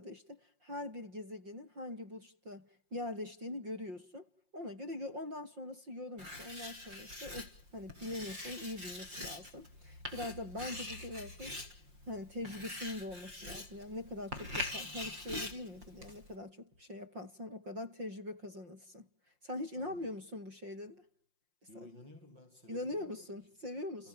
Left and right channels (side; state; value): left; late; 5.6 ms